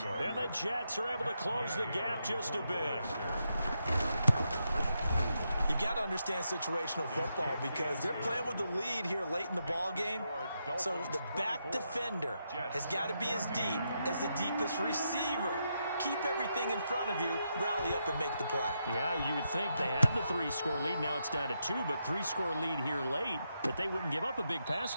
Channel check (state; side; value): inverted; both; correlation -0.83